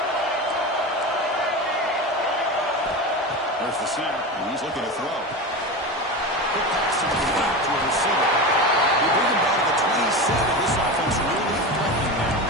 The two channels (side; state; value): both; normal; correlation 0.24